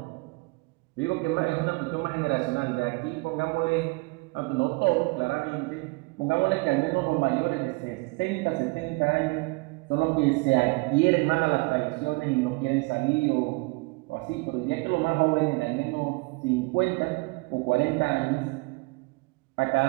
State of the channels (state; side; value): quieter; left; 27.0 dB